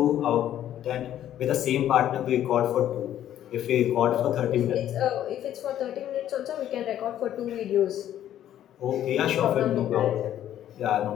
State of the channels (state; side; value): quieter; right; 11.5 dB